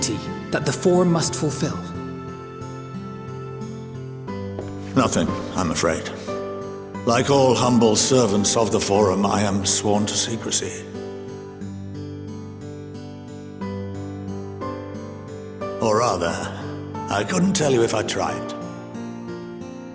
that the Forum must fulfill? Nothing, I'm afraid. Like all humble servants of the Forum, I am sworn to secrecy. Or rather, I couldn't tell you if I tried.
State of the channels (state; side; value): identical; both; correlation 1.00